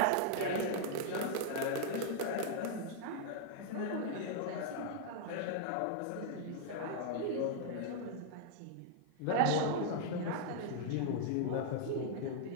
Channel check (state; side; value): different; both; correlation -0.01